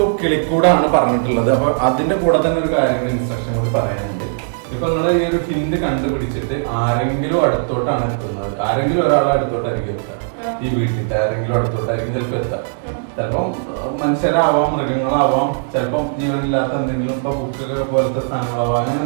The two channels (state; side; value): silent; left; digital silence